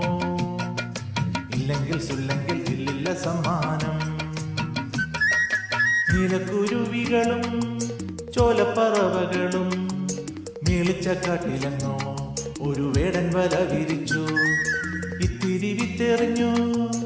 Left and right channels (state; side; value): identical; both; correlation 1.00